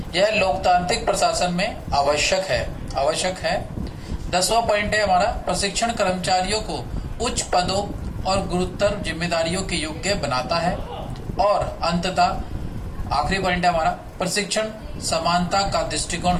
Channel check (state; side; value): identical; both; correlation 1.00